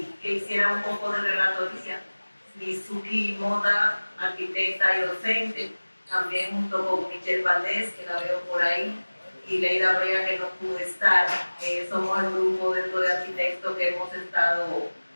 que hiciera un poco de relatoría. Mizuki Mota, arquitecta y docente, también junto con Michelle Valdés, que la veo por ahí, y Leida Brea, que no pudo estar. Somos el grupo dentro de arquitectos que hemos estado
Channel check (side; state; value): both; inverted; correlation -1.00